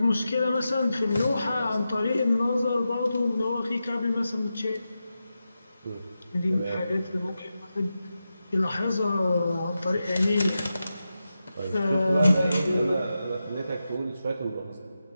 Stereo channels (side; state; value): both; inverted; correlation -0.90